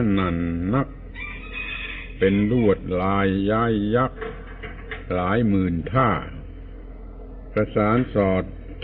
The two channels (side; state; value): both; identical; correlation 1.00